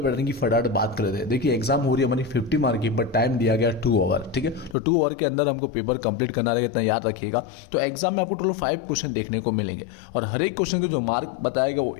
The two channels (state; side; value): drops out; right; at 4.8 s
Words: की फटाफट बात कर लेते हैं। देखिए एग्जाम हो रही है हमारी 50 मार्क की, बट टाइम दिया गया 2 आवर। ठीक है, तो 2 आवर के अंदर हमको पेपर कंप्लीट करना रहेगा, इतना याद रखिएगा। तो एग्जाम में आपको टोटल 5 क्वेश्चन देखने को मिलेंगे और हर एक क्वेश्चन के जो मार्क बताएगा वो